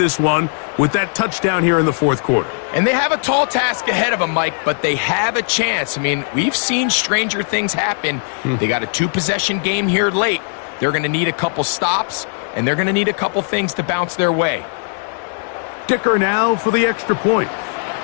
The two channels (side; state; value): right; silent; 58 dB below the other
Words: one with that touchdown here in the fourth quarter. And they have a tall task ahead of them, Mike, but they have a chance. I mean, we've seen stranger things happen. They got a 2-possession game here late. They're going to need a couple stops, and they're going to need a couple things to bounce their way. Dicker now for the extra point.